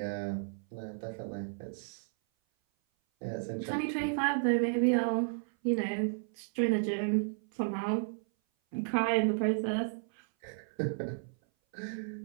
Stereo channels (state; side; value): silent; left; 56 dB below the other